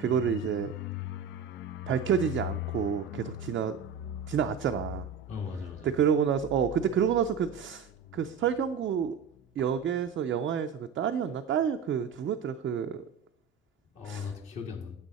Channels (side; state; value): left; quieter; 6.3 dB